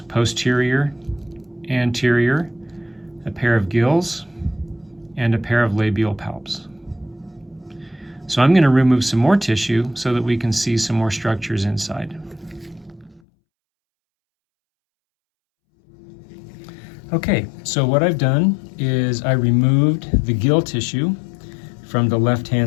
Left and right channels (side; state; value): right; drops out; at 13.2 s